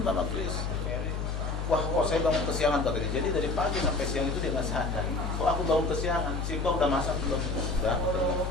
sama Chris. Wah, kok saya bangun kesiangan katanya. Jadi dari pagi sampai siang itu dia nggak sadar. Kok aku bangun kesiangan? Sipa udah masak belum? Udah.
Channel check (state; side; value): noise; left; hum, 2 dB below the sound